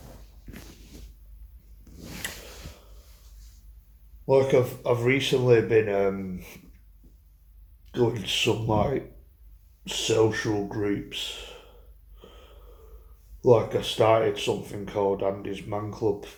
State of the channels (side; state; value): both; identical; correlation 1.00